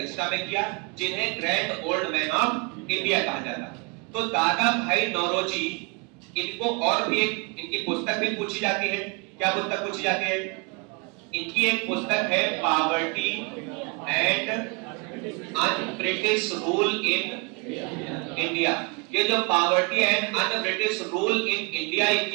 में किया, जिन्हें grand old man of India कहा जाता है। तो दादा भाई नौरोजी, इनको और भी एक इनकी पुस्तक भी पूछी जाती है। क्या पुस्तक पूछी जाती है? इनकी एक पुस्तक है poverty and un British rule in India. ये जो poverty and un British rule in India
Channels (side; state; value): left; quieter; 30.2 dB